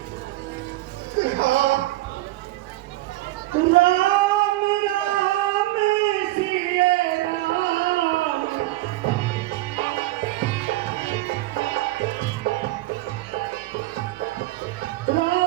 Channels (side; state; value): left; quieter; 17.9 dB